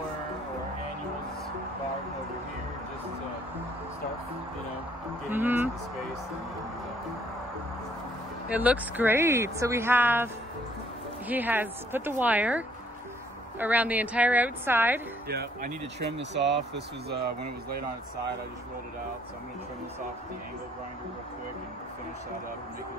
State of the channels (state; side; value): normal; both; correlation 0.64